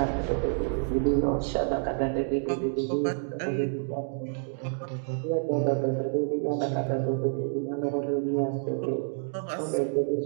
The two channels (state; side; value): silent; left; digital silence